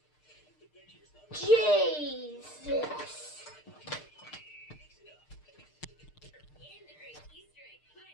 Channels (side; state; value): right; late; 6.6 ms